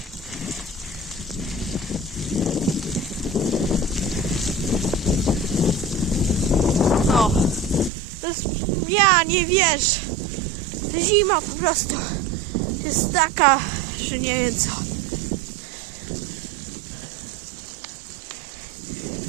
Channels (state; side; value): drops out; left; at 7.9 s